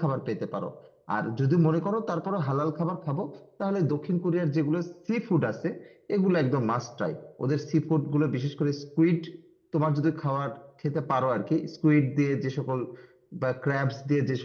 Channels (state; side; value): identical; both; correlation 1.00